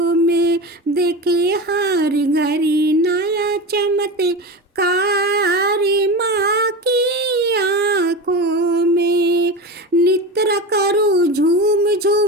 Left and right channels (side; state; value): both; normal; correlation 0.25